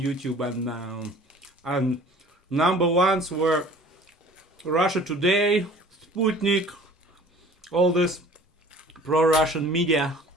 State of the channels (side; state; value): both; normal; correlation 0.48